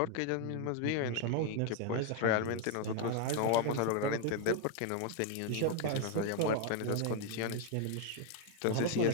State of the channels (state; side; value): different; both; correlation 0.01